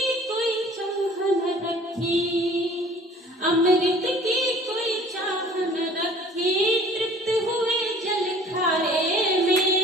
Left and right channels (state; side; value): normal; both; correlation 0.50